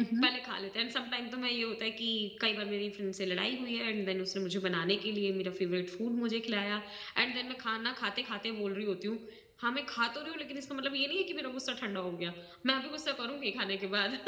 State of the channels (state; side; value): identical; both; correlation 1.00